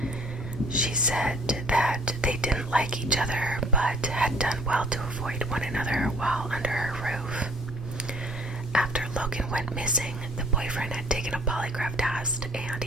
She said that they didn't like each other, but had done well to avoid one another while under her roof. After Logan went missing, the boyfriend had taken a polygraph test and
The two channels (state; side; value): normal; both; correlation 0.56